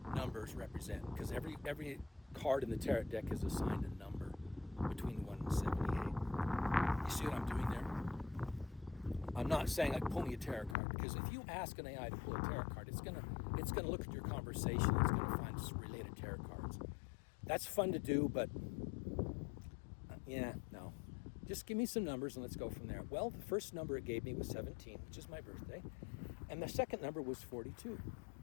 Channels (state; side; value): drops out; right; at 10.8 s